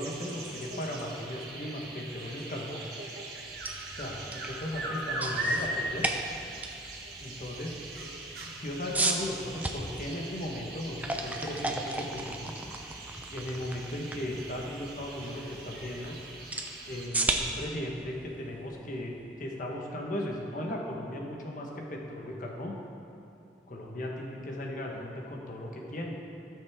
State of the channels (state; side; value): normal; both; correlation 0.39